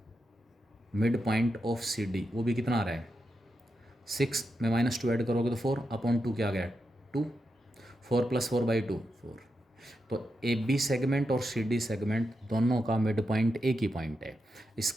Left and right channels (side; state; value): both; normal; correlation 0.86